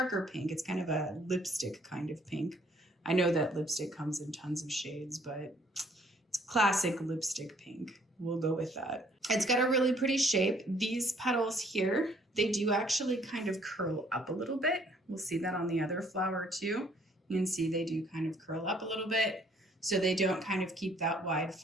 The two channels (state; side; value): normal; both; correlation 0.62